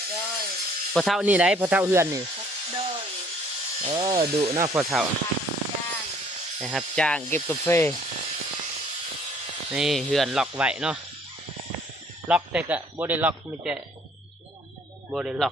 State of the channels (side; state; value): both; normal; correlation 0.59